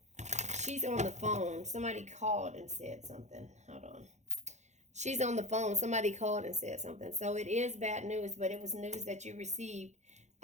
she's on the phone. Somebody called and said something. Hold on. She's on the phone. Somebody called and said something. So it is bad news, but it was news that you received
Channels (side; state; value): left; late; 0.33 ms